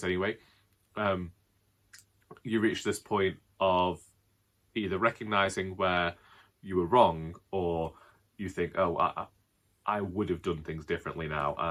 anyway, you reach this point of either recognising where you were wrong, or you think, oh, I would have done things differently now,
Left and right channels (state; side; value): identical; both; correlation 1.00